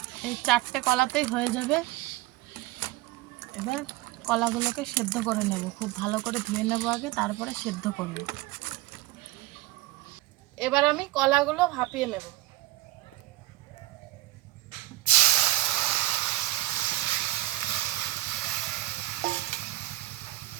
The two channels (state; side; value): quieter; left; 17.3 dB